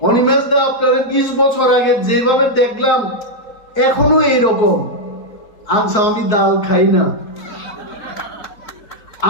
Animesh da আপনাদের 20 বছর আগে যেভাবে দেখলাম এখনো এইরকম আচ্ছা আমি ডাল খাই না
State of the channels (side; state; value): right; late; 4.6 ms